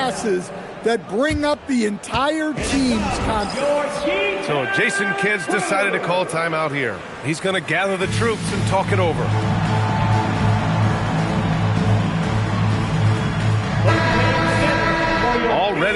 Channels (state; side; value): identical; both; correlation 1.00